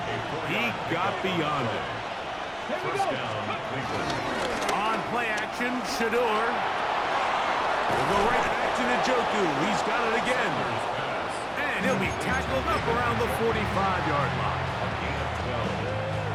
he got beyond it. First down, Cleveland. On play action, Shedeurs. Will go right back to Njoku. He's got it again. And he'll be tackled up around the 45-yard line.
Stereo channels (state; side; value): identical; both; correlation 1.00